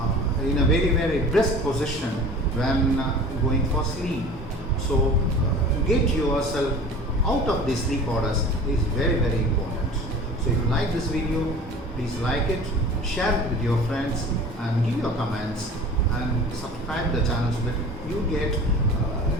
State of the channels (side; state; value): both; normal; correlation 0.41